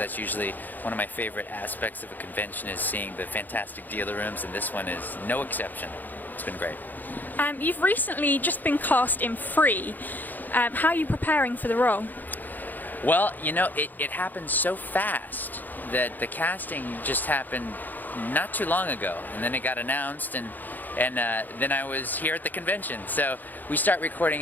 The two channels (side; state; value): right; late; 0.085 ms